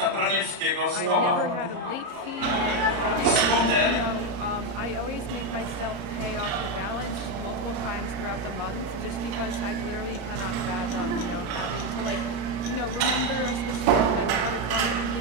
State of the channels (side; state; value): left; late; 34 ms